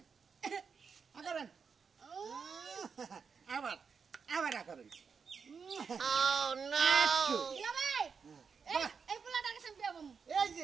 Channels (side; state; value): left; quieter; 5.9 dB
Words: আগরেন আবার আগরেন দুলাভাই এই পোলাটার কাছে আমি বিয়া বমু এই